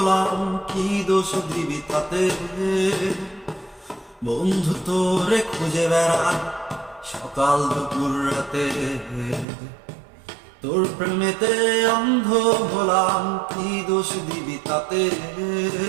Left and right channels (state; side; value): drops out; left; at 9.5 s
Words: কি দোষ দিবি তাতে? বন্ধু তোরে খুঁজে বেড়াই সকাল দুপুর রাতে। তোর প্রেমেতে অন্ধ হলাম, কি দোষ দিবি তাতে?